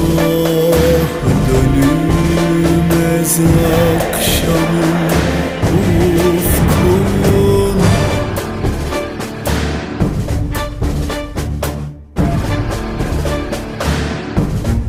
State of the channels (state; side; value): identical; both; correlation 1.00